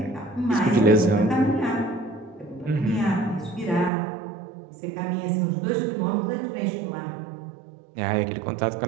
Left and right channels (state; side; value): drops out; left; at 3.9 s